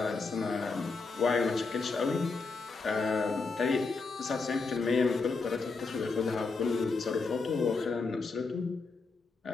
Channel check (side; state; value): right; quieter; 4.2 dB